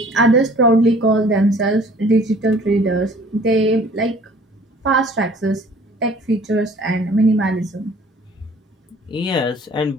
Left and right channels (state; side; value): normal; both; correlation 0.52